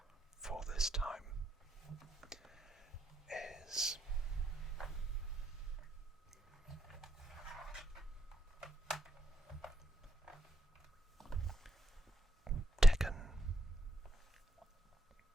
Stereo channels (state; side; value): normal; both; correlation 0.78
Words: for this time, is Tekken.